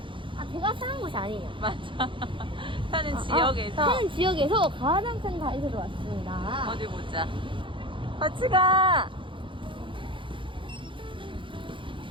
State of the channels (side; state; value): left; late; 0.24 ms